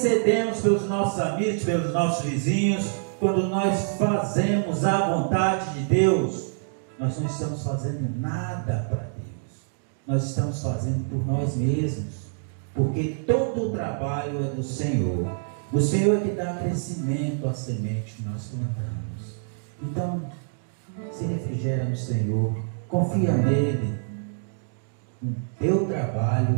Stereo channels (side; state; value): left; silent; digital silence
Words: pelos nossos amigos, pelos nossos vizinhos, quando nós fazemos a vontade de Deus, nós não estamos fazendo nada para Deus, nós estamos fazendo por nós mesmos, porque todo o trabalho é do Senhor. O Senhor é que dá crescimento à semente que nós plantamos. Então, se refrigera no Senhor, confia nele. O teu